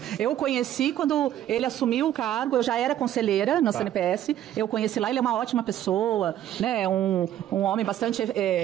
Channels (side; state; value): left; quieter; 11.8 dB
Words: Eu conheci quando ele assumiu o cargo, eu já era conselheira na CNPS, eu conheci lá, ele é uma ótima pessoa, né, um homem bastante